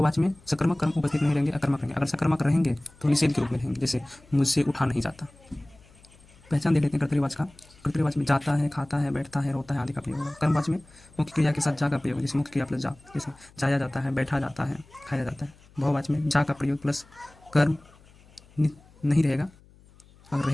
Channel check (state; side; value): noise; left; hum, 27 dB below the sound